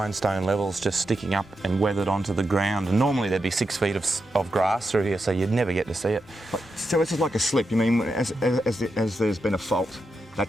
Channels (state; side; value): normal; both; correlation 0.87